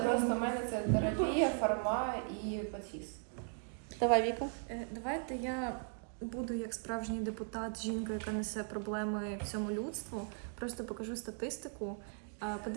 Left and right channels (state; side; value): silent; left; 53 dB below the other